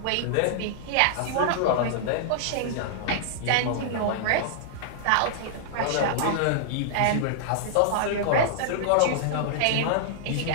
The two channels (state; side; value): different; both; correlation -0.01